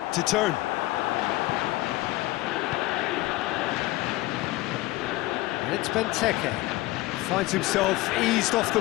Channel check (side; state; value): right; quieter; 18.6 dB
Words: turn. And it's Benteke. Finds himself eased off the